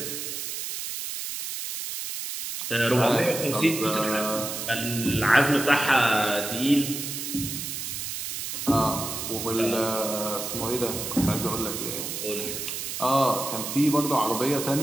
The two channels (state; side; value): noise; right; hiss, 5 dB below the sound